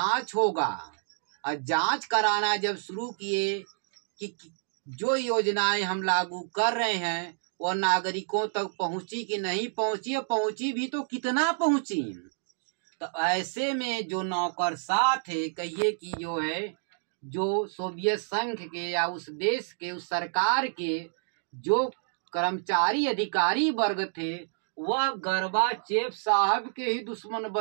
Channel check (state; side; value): silent; left; digital silence